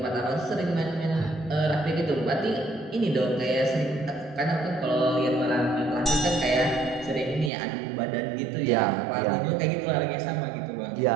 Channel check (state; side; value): drops out; left; at 7.5 s